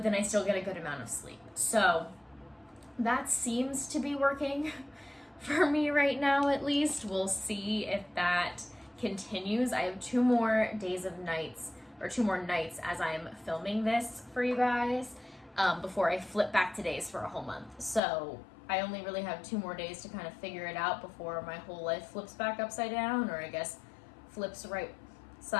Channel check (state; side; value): drops out; right; at 18.0 s